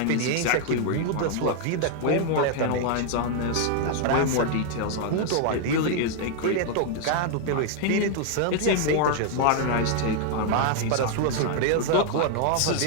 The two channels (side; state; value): both; different; correlation 0.00